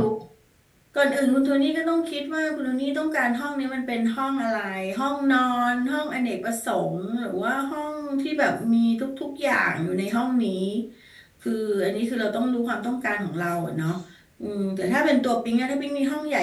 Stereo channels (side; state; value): both; identical; correlation 1.00